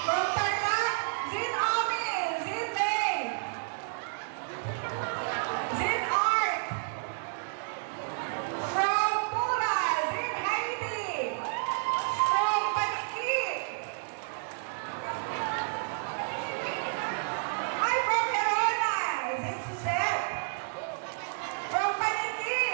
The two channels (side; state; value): left; silent; 57 dB below the other